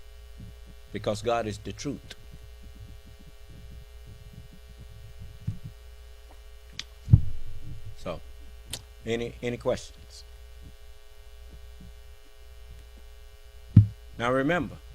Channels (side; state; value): both; identical; correlation 1.00